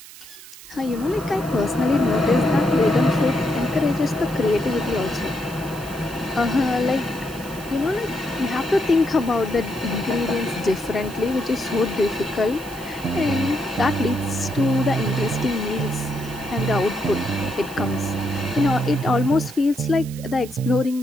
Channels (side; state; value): right; noise; hiss, 17 dB below the sound